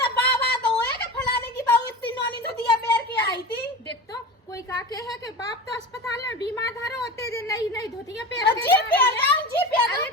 तो बाबा तो होए के फलाने की बहू इतनी नोनी धुतिया पैर के आई थी। देख तो कोई का के है कि बाप तो अस्पताल में बीमार धरो होते जे नहीं धोतिया पैर के जी पैर जाओ जी पैर अरे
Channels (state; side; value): normal; both; correlation 0.30